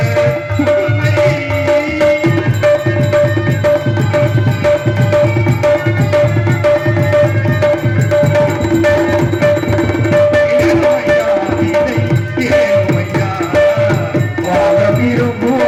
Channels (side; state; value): both; identical; correlation 1.00